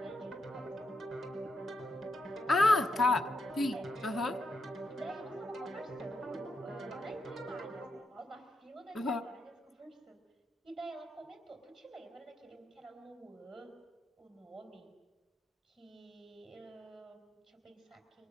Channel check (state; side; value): normal; both; correlation 0.83